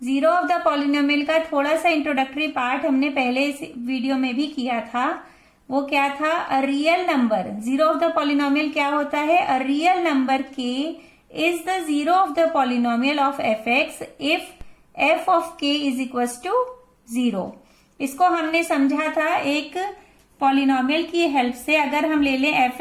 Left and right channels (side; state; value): both; identical; correlation 1.00